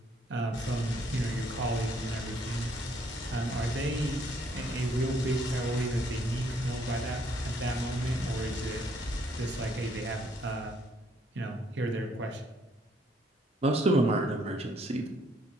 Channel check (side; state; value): both; normal; correlation 0.67